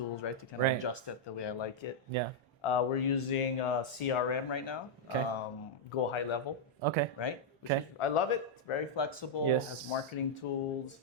right, to kind of Right. adjust it the way I like it. Yeah. We're using CRM right now, Okay. Go High Level, Okay. right? Which Okay. is, I love it. It's very flexible. Yes. Has marketing tools,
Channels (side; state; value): both; normal; correlation -0.04